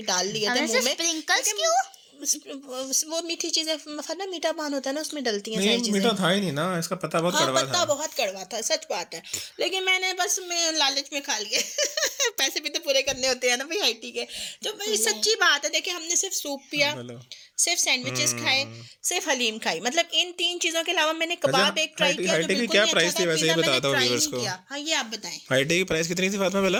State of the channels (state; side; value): identical; both; correlation 1.00